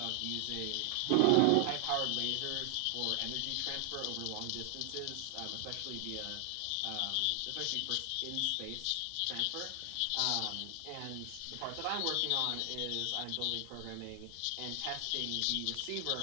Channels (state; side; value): different; both; correlation 0.00